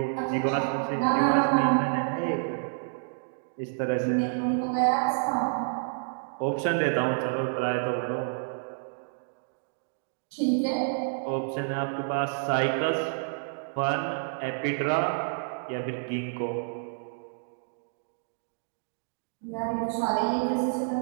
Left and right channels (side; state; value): left; silent; digital silence